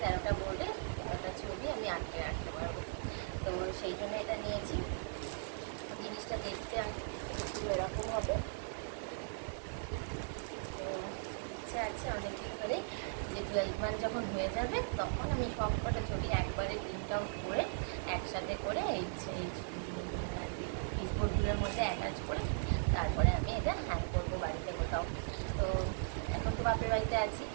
13টা বোর্ডে 13টা ছবি আমি আটকে রাখতে পারবো। তো সেই জন্য এটা নিয়েছি। জিনিসটা দেখতে একটু এরকম হবে। তো ইচ্ছা আছে অনেকদিন ধরে যে 12 মান্থ যখন হয়ে যাবে তখন আমি সব কটা ছবি একবারে প্রিন্ট আউট করে একসাথে করে এই পিসবোর্ডগুলোর মধ্যে অ্যাটাচ করে তারপরে আমি এটা হ্যাং করবো বাড়িতে কোথাও। তো এখন তো বাপের বাড়িতে আছি,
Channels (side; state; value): left; silent; digital silence